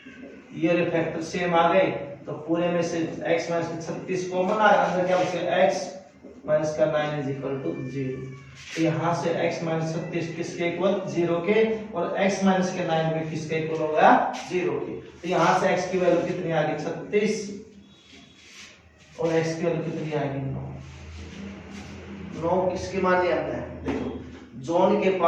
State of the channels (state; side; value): identical; both; correlation 1.00